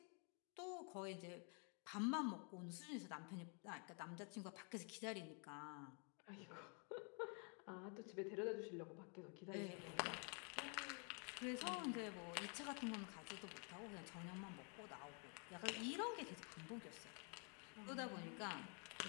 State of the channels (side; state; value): right; quieter; 38.2 dB